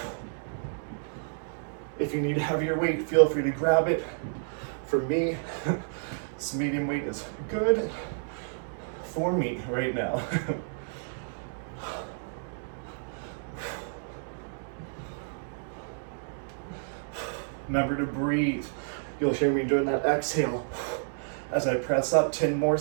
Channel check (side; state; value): left; silent; digital silence